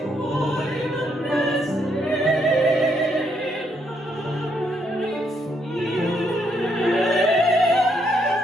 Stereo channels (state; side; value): normal; both; correlation 0.74